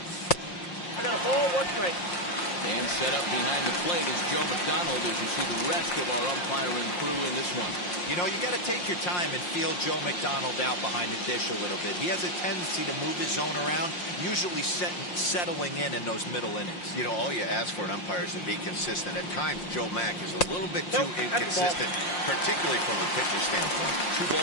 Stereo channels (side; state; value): right; late; 5.6 ms